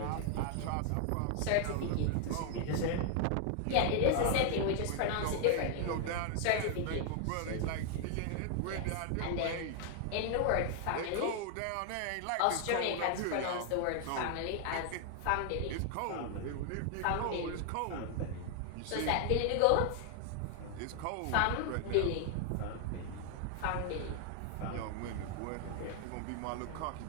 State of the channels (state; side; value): different; both; correlation 0.00